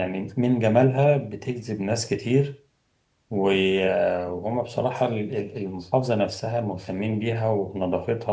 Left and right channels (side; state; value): both; identical; correlation 1.00